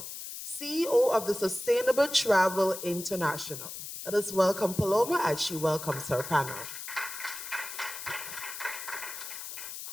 CEO of the Sustainable Travel International. Let us welcome Paloma as she welcomes her panel.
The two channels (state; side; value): noise; left; hiss, 9 dB below the sound